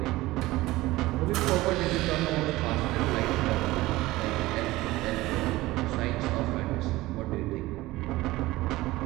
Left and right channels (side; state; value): left; quieter; 18.6 dB